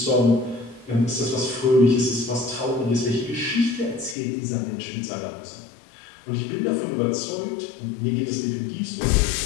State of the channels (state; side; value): drops out; right; at 4.2 s